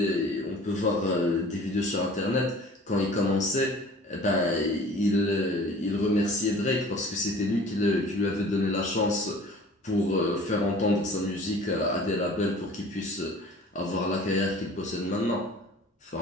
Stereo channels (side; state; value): both; normal; correlation 0.46